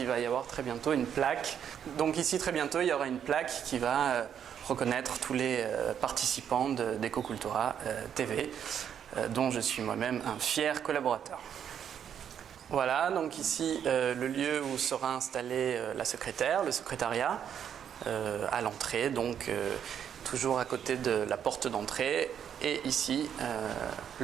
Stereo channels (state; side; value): quieter; left; 8.7 dB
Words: va y avoir très bientôt une plaque. Donc ici très bientôt, il y aura une plaque qui va reconnaître tous les participants d'Ecocultura TV, dont je suis moi-même un fier collaborateur. Voilà, donc ici le lieu où sera installée la secrétaire, le secrétariat, à l'entrée, donc toujours à côté de la porte d'entrée, et ici